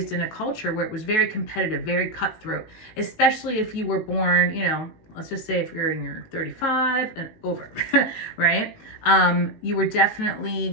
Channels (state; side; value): late; right; 19 ms